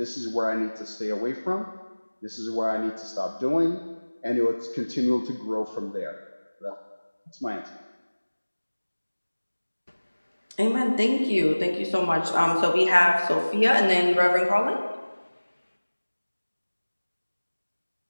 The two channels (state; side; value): inverted; both; correlation -1.00